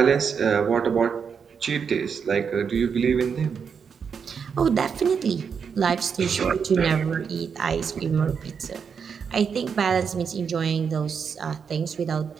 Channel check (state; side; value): quieter; left; 6.5 dB